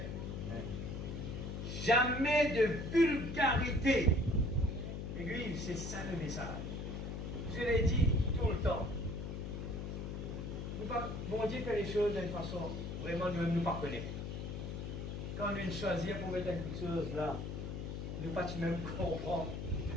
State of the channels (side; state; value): left; noise; hum, 5 dB below the sound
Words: Jamais de vulgarité. L'église, c'est ça le message. Je l'ai dit tout le temps. Bon Dieu fait les choses d'une façon vraiment nous ne pas connaître. Quand nous choisir pour mettre quelque chose là, nous ne pas même comprendre.